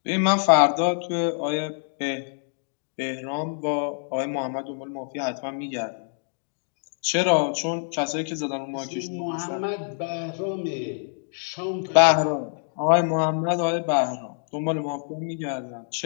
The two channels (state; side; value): silent; right; digital silence